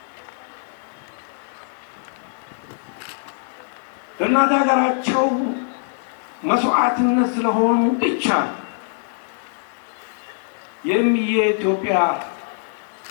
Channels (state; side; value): silent; right; 64 dB below the other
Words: እናት ሀገራቸው መስዋዕትነት ስለሆኑ ብቻ የኢትዮጵያ